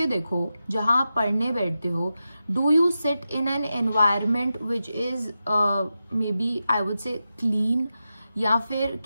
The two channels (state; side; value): inverted; both; correlation -0.91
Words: देखो, जहां आप पढ़ने बैठते हो, do you sit in an environment which is maybe I would say clean, या फिर